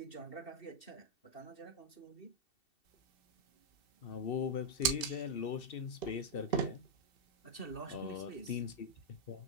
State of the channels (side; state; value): right; late; 2.7 ms